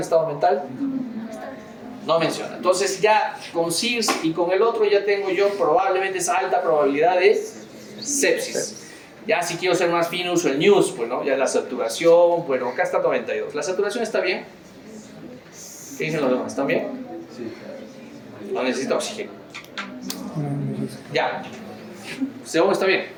estado mental? No menciona. Entonces ya con SIRS y con el otro ya tengo yo probablemente esa alta probabilidad de sepsis. Ya si quiero ser más fino uso el NEWS, pues no, ya la saturación, bueno, acá está 92. ¿La saturación está bien? ¿Qué dicen los demás? ¿Están bien? Sí. No necesita oxígeno. Ya. ¿Según está bien?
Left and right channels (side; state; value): both; identical; correlation 1.00